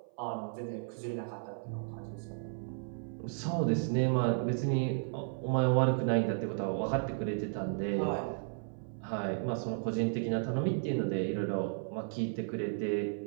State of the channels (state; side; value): silent; left; 55 dB below the other